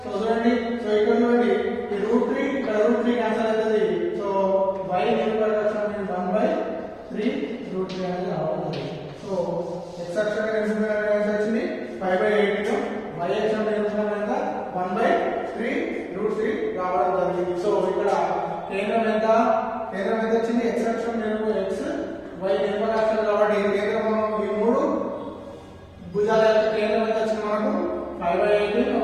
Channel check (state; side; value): identical; both; correlation 1.00